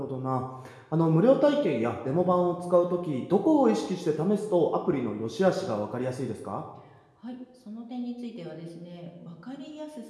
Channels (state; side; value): identical; both; correlation 1.00